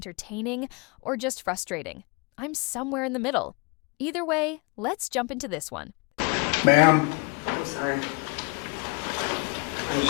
or just frustrating? I'm somewhere in the middle. Either way, let's jump into this one. Ma'am. I'm sorry. I'm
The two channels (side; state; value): right; quieter; 30.6 dB